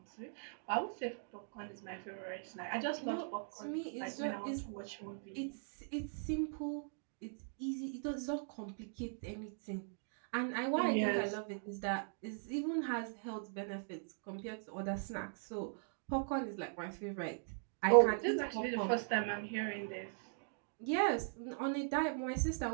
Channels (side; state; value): left; silent; digital silence